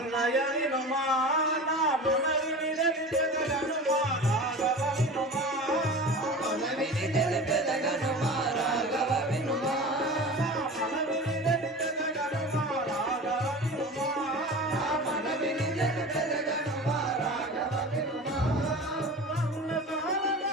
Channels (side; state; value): both; normal; correlation 0.34